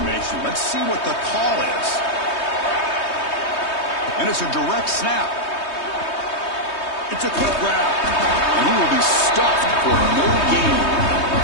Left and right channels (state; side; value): late; right; 3.2 ms